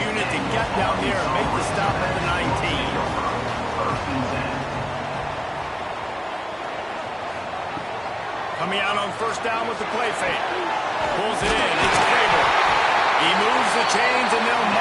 unit to get down there and make the stop at the 19. Coming out on first down with the play fake. Pulls it in. It's Cable. He moves the chains and they'll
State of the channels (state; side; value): identical; both; correlation 1.00